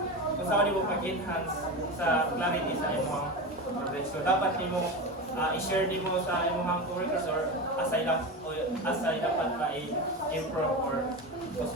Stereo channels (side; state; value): both; normal; correlation 0.22